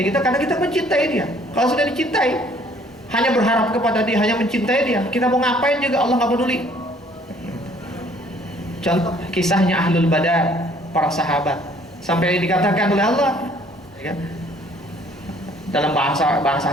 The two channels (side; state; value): both; normal; correlation 0.59